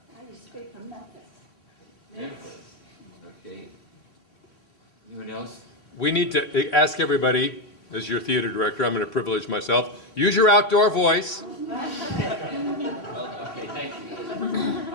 I used to speak from Memphis. Okay. Anyone else? We need to ask everybody, as your theater director, I'm going to privilege myself, use your outdoor voice. Okay, thank you.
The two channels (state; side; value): late; right; 3.3 ms